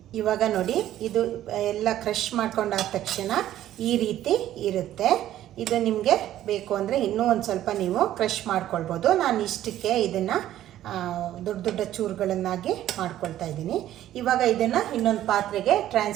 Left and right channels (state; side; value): quieter; left; 12.8 dB